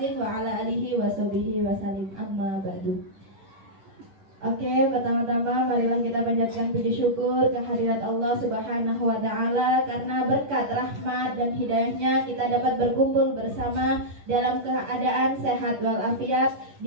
wa ala alihi washabihi wasallim. Amma ba'du. Oke, pertama-tama marilah kita panjatkan puji syukur kehadirat Allah Subhanahu wa taala karena berkat rahmat dan hidayahnya kita dapat berkumpul bersama dalam keadaan sehat walafiat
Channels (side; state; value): left; late; 10 ms